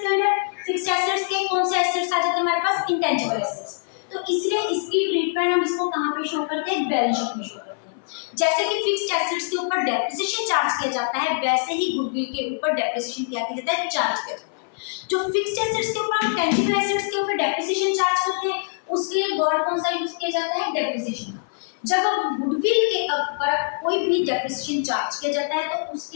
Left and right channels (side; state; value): right; silent; 58 dB below the other